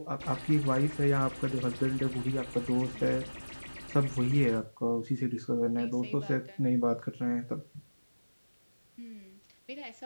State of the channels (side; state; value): both; inverted; correlation -1.00